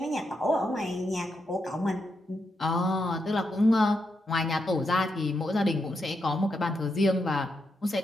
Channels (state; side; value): normal; both; correlation 0.83